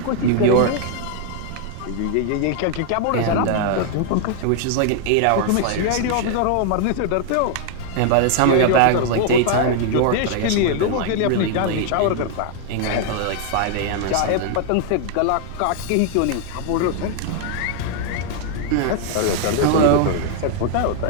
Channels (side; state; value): both; different; correlation 0.00